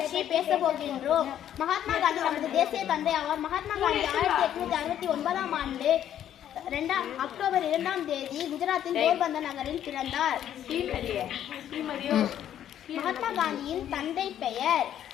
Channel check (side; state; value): right; quieter; 10.6 dB